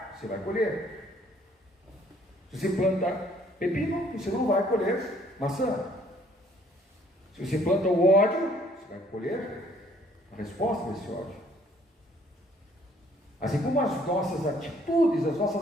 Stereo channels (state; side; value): normal; both; correlation 0.61